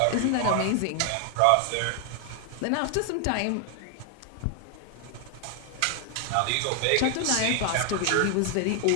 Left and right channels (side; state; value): both; different; correlation 0.00